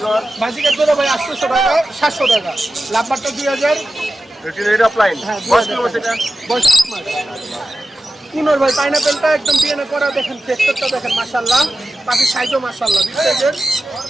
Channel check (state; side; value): normal; both; correlation 0.93